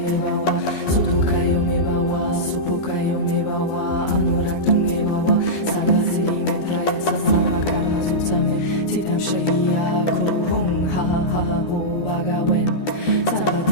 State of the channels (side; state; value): right; late; 12 ms